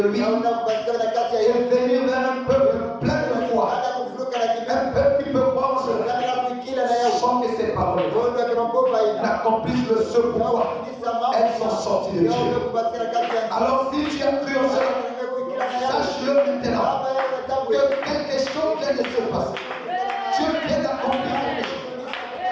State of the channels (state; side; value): identical; both; correlation 1.00